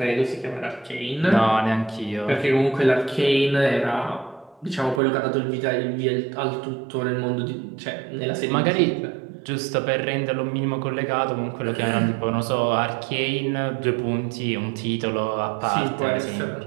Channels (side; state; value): left; drops out; at 5.0 s